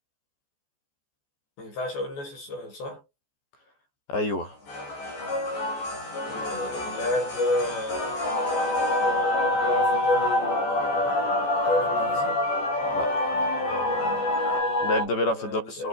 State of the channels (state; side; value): late; right; 14 ms